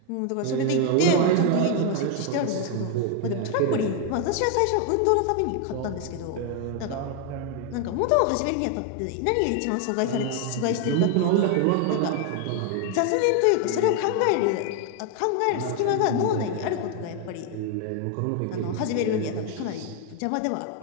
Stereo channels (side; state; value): both; different; correlation 0.01